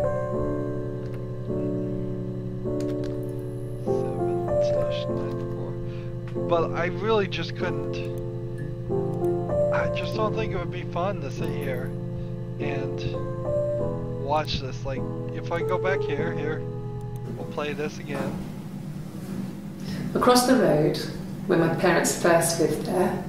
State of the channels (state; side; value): identical; both; correlation 1.00